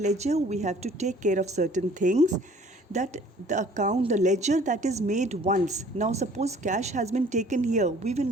we have to take care of certain things, that the account, the ledger that is made once. Now suppose cash has been taken here, we will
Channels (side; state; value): both; normal; correlation 0.54